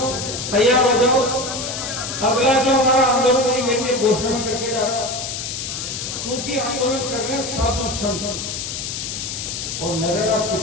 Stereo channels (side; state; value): left; noise; hiss, 5 dB below the sound